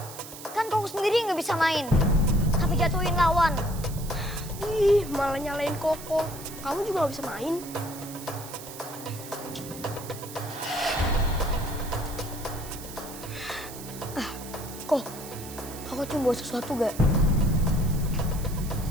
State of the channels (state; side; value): noise; right; hiss, 14 dB below the sound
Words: Kan Koko sendiri nggak bisa main. Tapi jatuhin lawan. Ih, malah nyalain Koko. Kamu juga nggak bisa main. Kok, Koko cium bawa sesuatu gak?